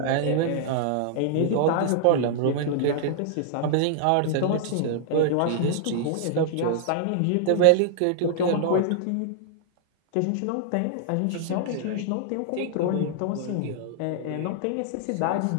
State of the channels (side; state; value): both; different; correlation -0.01